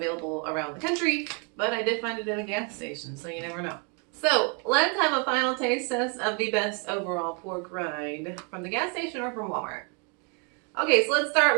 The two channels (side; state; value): left; quieter; 36.7 dB